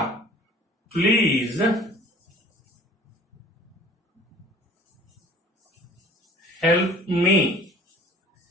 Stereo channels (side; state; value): both; normal; correlation 0.49